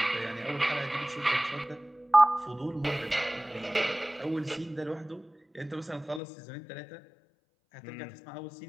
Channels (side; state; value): right; drops out; at 6.2 s